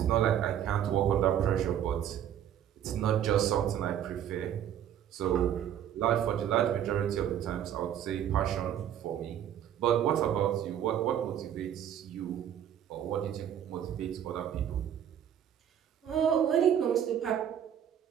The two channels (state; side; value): quieter; left; 10.0 dB